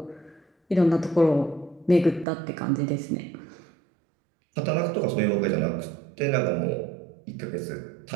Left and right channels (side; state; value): left; drops out; at 2.2 s